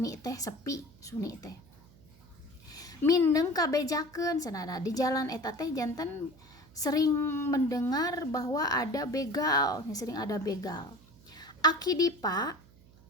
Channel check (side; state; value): right; noise; hum, 25 dB below the sound